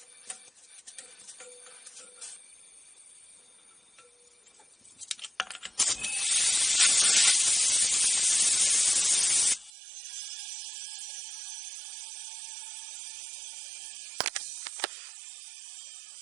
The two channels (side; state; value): left; drops out; at 9.7 s